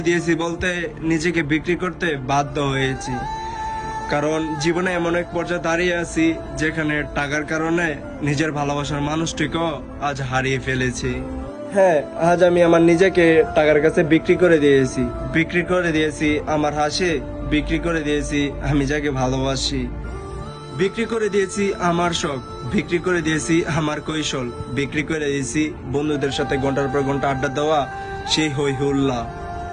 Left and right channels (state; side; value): identical; both; correlation 1.00